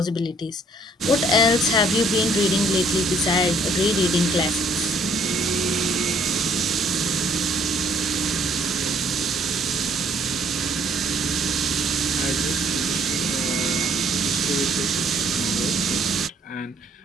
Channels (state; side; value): normal; both; correlation 0.63